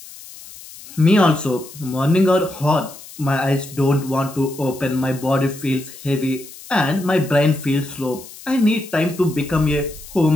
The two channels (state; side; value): noise; left; hiss, 17 dB below the sound